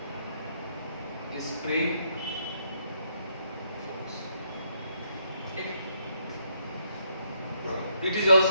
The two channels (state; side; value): inverted; both; correlation -0.74